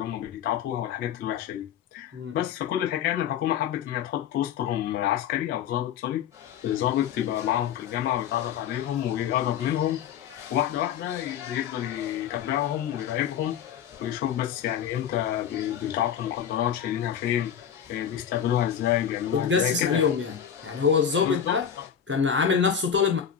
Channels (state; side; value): quieter; right; 8.8 dB